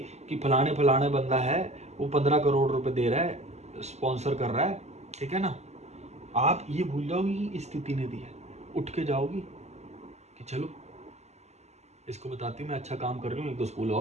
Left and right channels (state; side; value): late; left; 0.32 ms